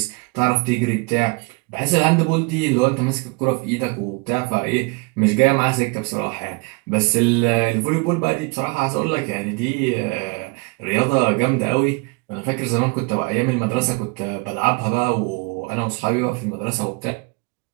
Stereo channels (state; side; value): quieter; left; 28.8 dB